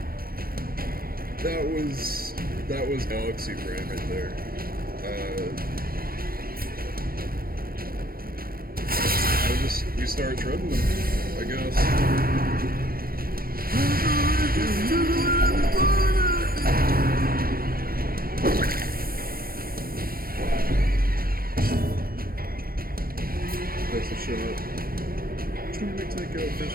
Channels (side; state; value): left; late; 0.43 ms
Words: That was Galaxy Brain right there. We start treading them, I guess. That's a shot. Which one do we take out first?